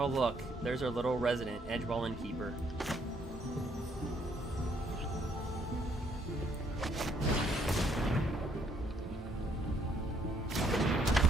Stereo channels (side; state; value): both; normal; correlation 0.68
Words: look, there's our little resident, Edgewall Innkeeper.